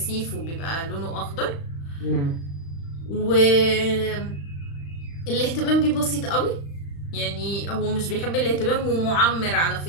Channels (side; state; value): right; late; 35 ms